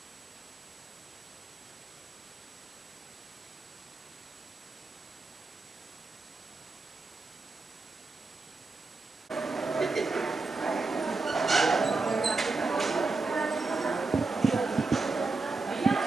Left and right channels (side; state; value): left; quieter; 3.8 dB